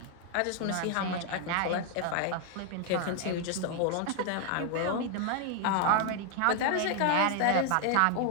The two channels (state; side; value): different; both; correlation 0.00